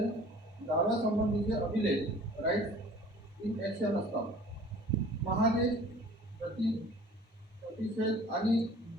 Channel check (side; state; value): both; normal; correlation 0.48